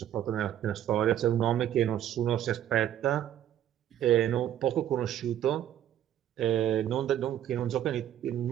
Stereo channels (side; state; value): left; quieter; 11.2 dB